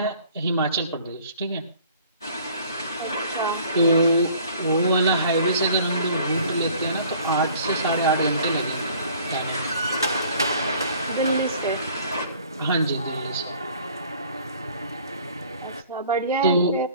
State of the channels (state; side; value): inverted; both; correlation -0.53